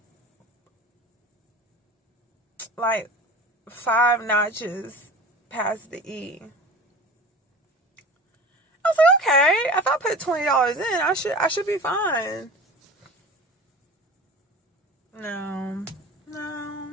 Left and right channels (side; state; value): both; normal; correlation 0.37